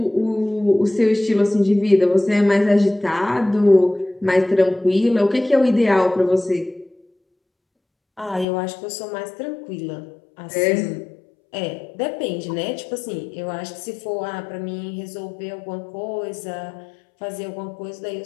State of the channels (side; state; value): right; drops out; at 8.5 s